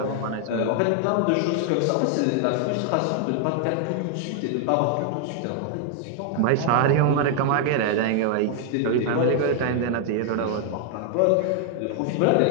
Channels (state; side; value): different; both; correlation 0.00